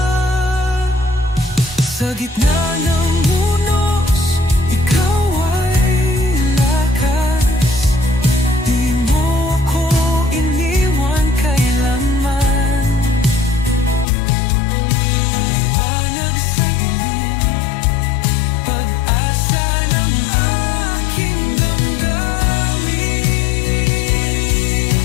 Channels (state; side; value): drops out; right; at 14.1 s